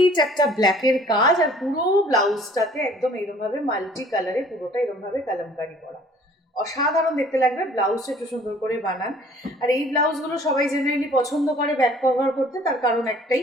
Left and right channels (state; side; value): normal; both; correlation 0.54